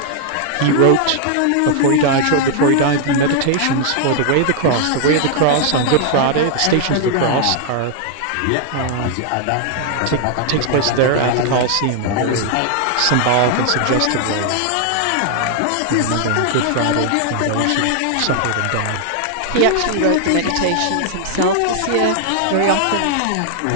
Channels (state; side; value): different; both; correlation 0.00